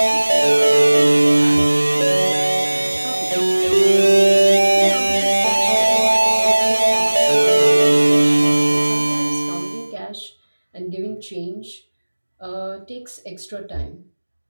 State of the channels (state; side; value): inverted; both; correlation -1.00